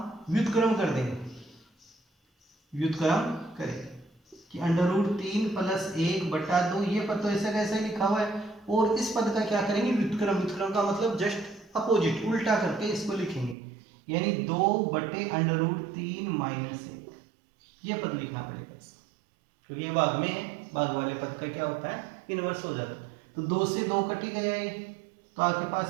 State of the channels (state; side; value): drops out; left; at 13.6 s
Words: व्युत्क्रम कर देंगे। व्युत्क्रम करेंगे कि √3 प्लस 1/2, ये पद तो ऐसे कैसे लिखा हुआ है, और इस पद का क्या करेंगे, व्युत्क्रम। व्युत्क्रम का मतलब जस्ट अपोजिट, उल्टा करके इसको लिखेंगे, यानी 2/√3 माइनस 1। ये पद लिखना पड़ेगा क्योंकि ये भाग में है, भाग वाले पद का क्या होता है, इनवर्स हो जाता है। तो 2 से 2 कट ही गया ये, तो आपके